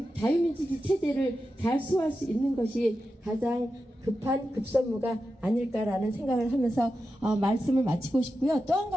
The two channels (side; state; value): both; normal; correlation 0.90